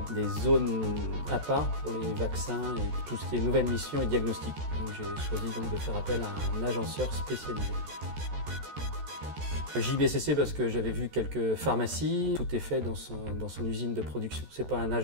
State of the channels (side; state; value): left; late; 14 ms